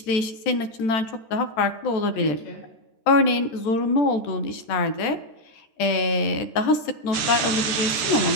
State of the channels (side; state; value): right; late; 14 ms